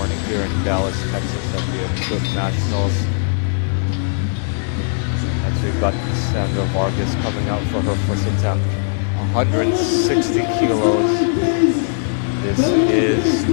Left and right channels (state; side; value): silent; right; digital silence